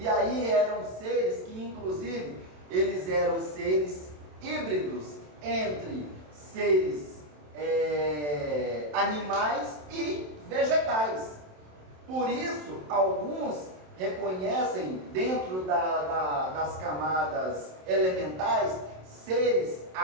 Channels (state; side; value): late; left; 27 ms